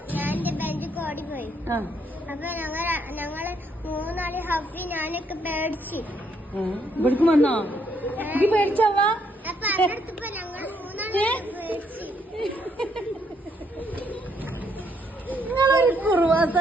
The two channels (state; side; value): normal; both; correlation 0.72